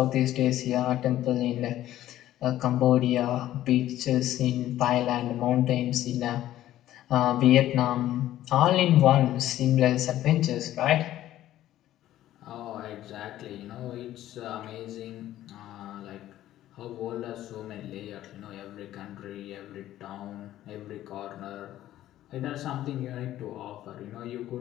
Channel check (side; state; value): right; quieter; 13.5 dB